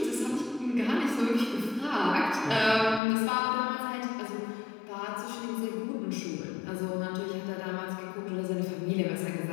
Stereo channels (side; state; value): right; drops out; at 3.0 s